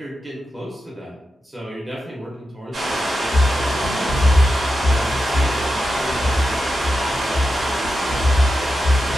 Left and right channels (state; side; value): normal; both; correlation 0.89